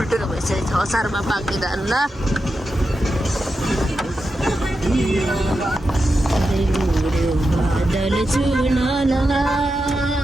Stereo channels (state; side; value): normal; both; correlation 0.89